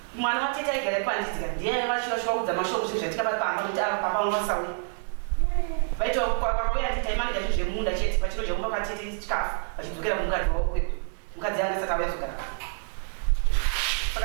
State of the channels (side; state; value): left; silent; 60 dB below the other